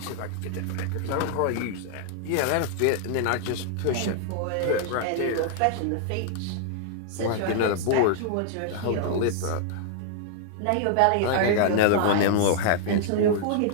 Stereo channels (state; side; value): different; both; correlation -0.01